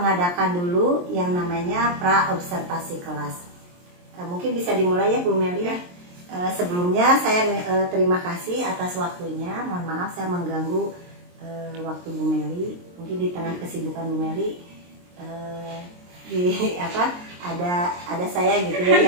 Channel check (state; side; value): late; left; 23 ms